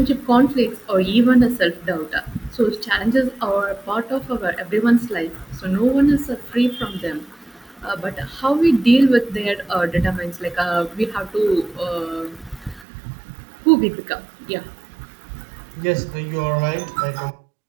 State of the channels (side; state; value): left; drops out; at 12.9 s